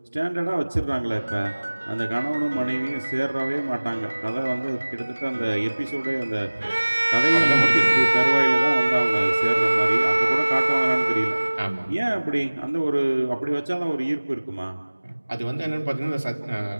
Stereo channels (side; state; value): both; inverted; correlation -1.00